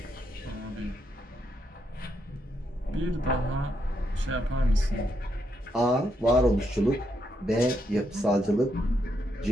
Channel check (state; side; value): normal; both; correlation 0.79